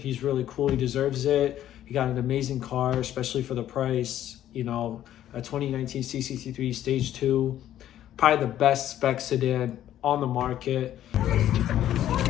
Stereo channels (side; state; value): right; quieter; 11.9 dB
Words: really cool. He deserves it. He got an amazing car, especially for the price. You know, a 2019 C63 Stage 2. Probably the best spec sedan on the market.